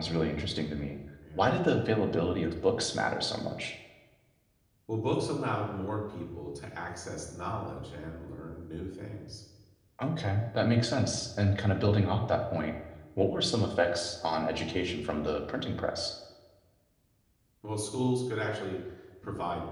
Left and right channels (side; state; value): both; identical; correlation 1.00